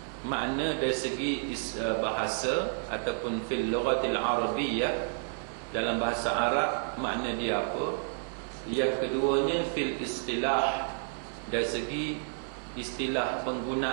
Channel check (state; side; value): silent; left; 57 dB below the other